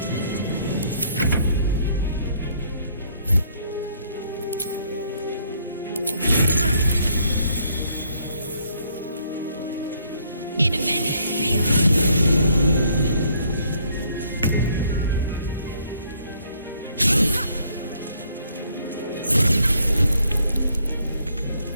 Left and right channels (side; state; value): both; inverted; correlation -0.67